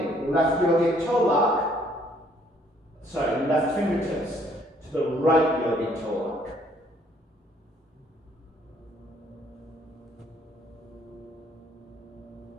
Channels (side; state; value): both; normal; correlation 0.63